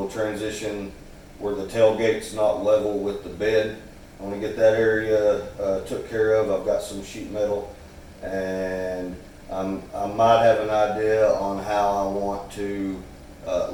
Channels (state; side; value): identical; both; correlation 1.00